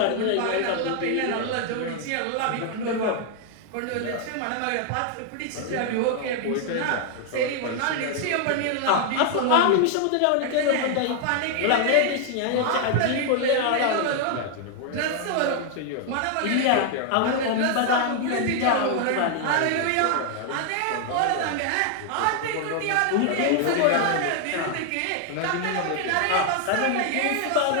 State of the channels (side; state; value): both; different; correlation 0.00